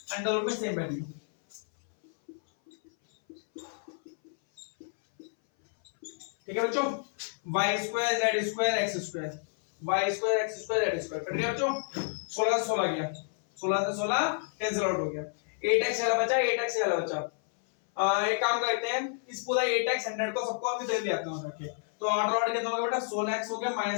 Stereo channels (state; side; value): silent; right; 58 dB below the other